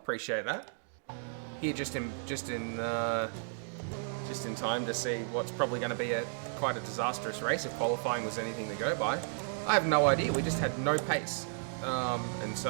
that. Here, just in time to see what's probably going to be quite a disastrous race if qualifying was anything to go by. I have no idea. We just had no pace, and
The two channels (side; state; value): left; silent; digital silence